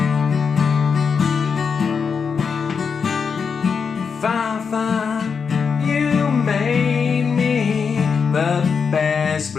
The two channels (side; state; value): right; quieter; 5.9 dB